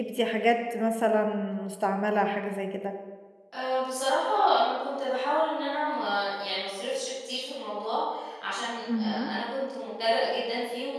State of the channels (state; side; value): identical; both; correlation 1.00